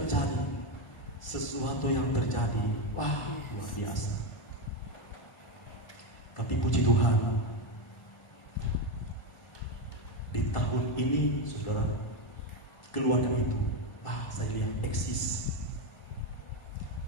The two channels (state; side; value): late; right; 1.4 ms